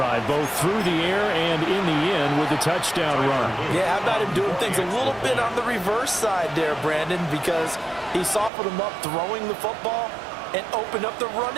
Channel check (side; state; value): left; drops out; at 8.5 s